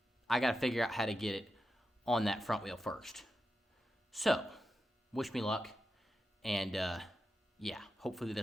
I got to figure out how to get it on that front wheel first. So, wish me luck, and yeah, hopefully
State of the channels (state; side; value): normal; both; correlation 0.89